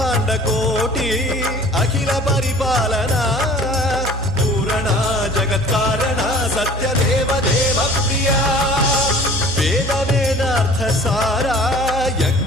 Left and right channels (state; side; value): normal; both; correlation 0.47